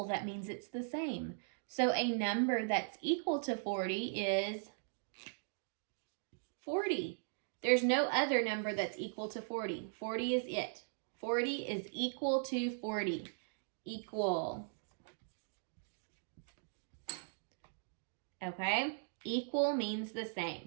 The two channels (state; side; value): silent; left; digital silence